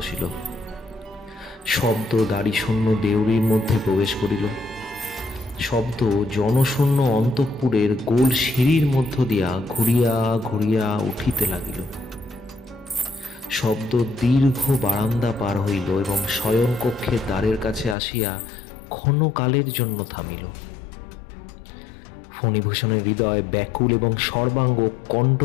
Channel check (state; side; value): drops out; right; at 17.9 s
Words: শব্দ দাড়িশূন্য দেউড়ির মধ্যে প্রবেশ করিল। শব্দ জনশূন্য অন্তঃপুরের গোল সিঁড়ির মধ্য দিয়া ঘুরিয়া ঘুরিয়া উঠিতে লাগিল। শব্দ দীর্ঘ বারান্দা পার হইল এবং শয়নকক্ষের দ্বারের কাছে আসিয়া ক্ষণকালের জন্য থামিল। ফণিভূষণের হৃদয় ব্যাকুল এবং সর্বাঙ্গ